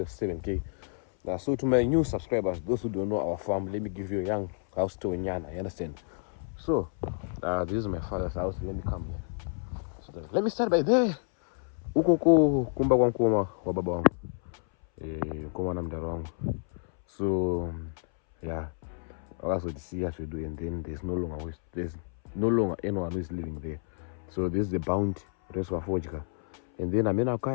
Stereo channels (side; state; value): right; silent; 58 dB below the other